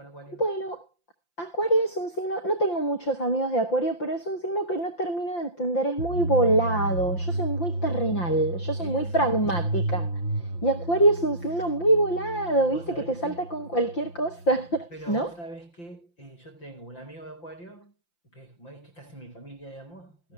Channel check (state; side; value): late; right; 5.8 ms